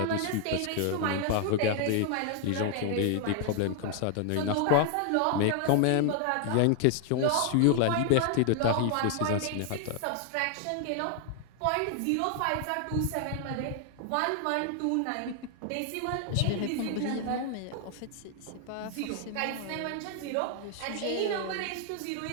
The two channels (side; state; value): both; different; correlation 0.00